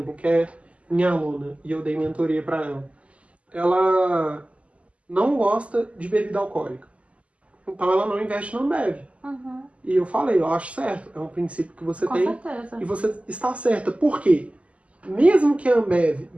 que é minha aluna, e eu dei mentoria para ela não gosta de bebida alcoólica. Então, ela não investe na Ambev. E eu falei, eu acho certo, é um princípio que você tem. Com certeza. E você está certa. Por quê? Mesmo que a Ambev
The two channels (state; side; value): late; left; 0.064 ms